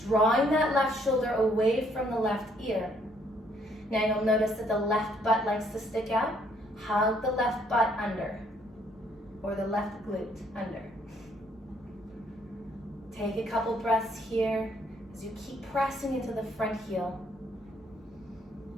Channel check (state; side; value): normal; both; correlation 0.67